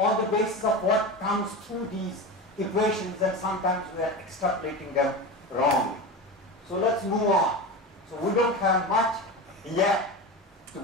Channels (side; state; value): both; normal; correlation 0.25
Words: the basis of what comes through these equations, and sometimes we are extrapolating them wrongly. So let's move on. So we don't have much yet to